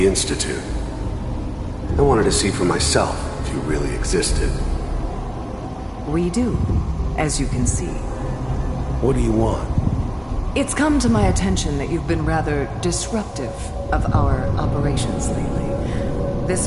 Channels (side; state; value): both; identical; correlation 1.00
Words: Institute. I wanted to see for myself if you really existed. We do, as you can see. What do you want? It's come to my attention that you've been rather disruptive of our operations lately. This